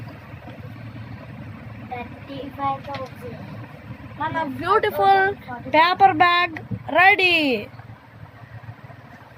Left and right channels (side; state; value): both; identical; correlation 1.00